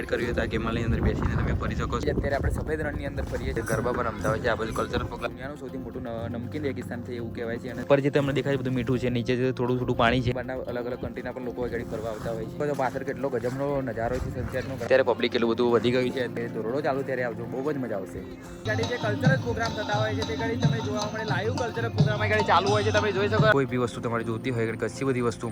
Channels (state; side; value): identical; both; correlation 1.00